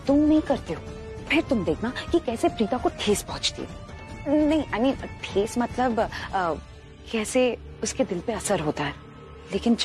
तुम नहीं करते हो। फिर तुम देखना कि कैसे प्रीता को ठेस पहुंचती है। नहीं, आई मीन ठेस मतलब कैसे उसके दिल पे असर होता है। लेकिन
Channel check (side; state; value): both; identical; correlation 1.00